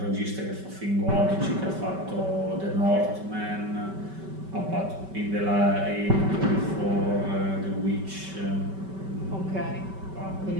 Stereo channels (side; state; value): left; late; 5.2 ms